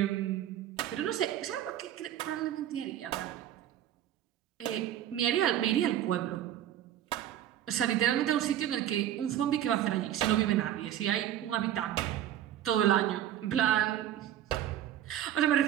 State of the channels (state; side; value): quieter; left; 11.6 dB